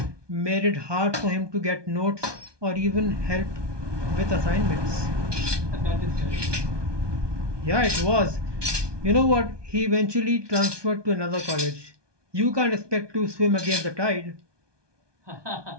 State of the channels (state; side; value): late; left; 1.2 ms